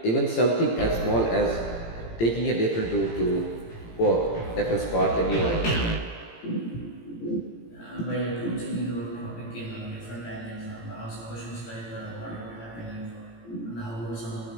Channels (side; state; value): right; late; 18 ms